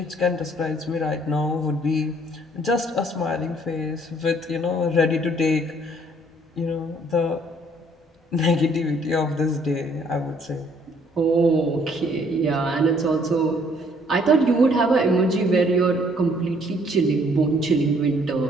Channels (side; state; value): both; normal; correlation 0.62